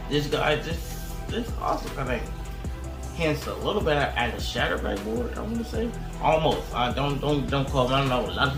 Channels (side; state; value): both; identical; correlation 1.00